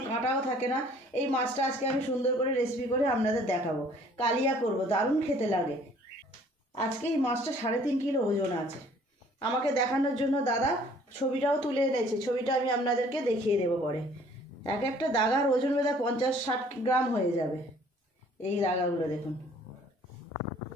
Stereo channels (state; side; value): normal; both; correlation 0.56